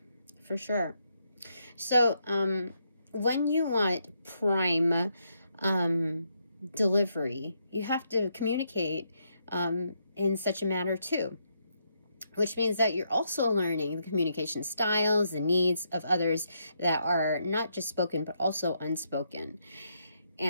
sure. So when you want prime delivery, you have to communicate in such a manner too, which means that you're also learning the communication styles, the needs of others that are not just spoken but also unspoken.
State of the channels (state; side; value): inverted; both; correlation -0.78